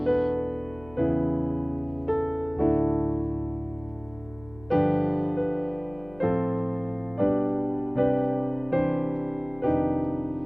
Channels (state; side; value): noise; left; hum, 21 dB below the sound